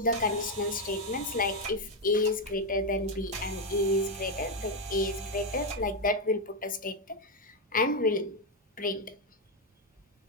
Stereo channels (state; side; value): normal; both; correlation 0.04